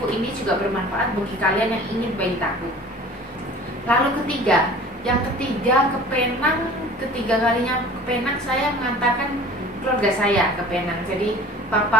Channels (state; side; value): normal; both; correlation 0.44